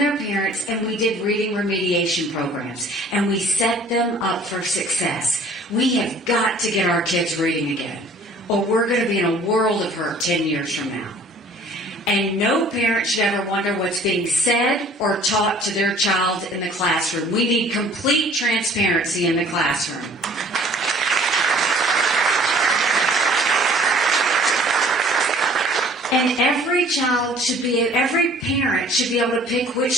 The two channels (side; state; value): both; normal; correlation 0.52